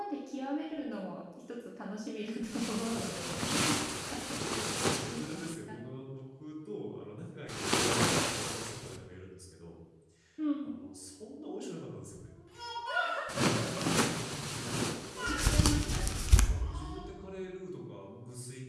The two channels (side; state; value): both; identical; correlation 1.00